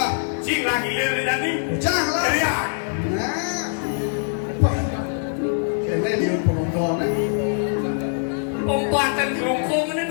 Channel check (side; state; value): right; silent; 64 dB below the other